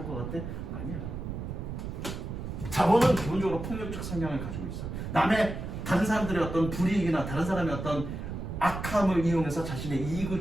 것 같아? 아니야. 자본은 기본적으로 폭력적 성향을 가지고 있어. 다른 사람들의 어떤 불이익이나 다른 사람의 어떤 악함을 이용해서 자신의 이익을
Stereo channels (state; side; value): noise; right; rumble, 6 dB below the sound